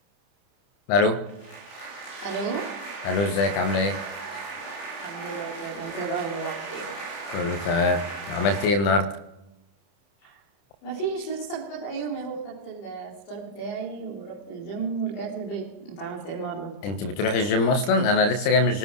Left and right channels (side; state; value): right; late; 30 ms